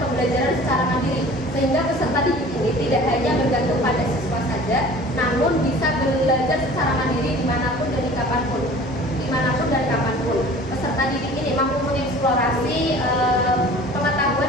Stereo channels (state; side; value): normal; both; correlation 0.45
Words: pembelajaran secara mandiri, sehingga peserta didik ini tidak hanya bergantung pada siswa saja, namun bisa belajar secara mandiri dimanapun dan kapanpun. Peserta didik ini mampu mengeksplorasi